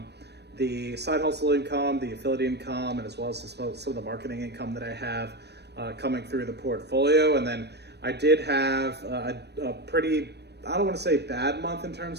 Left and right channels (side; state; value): left; late; 0.49 ms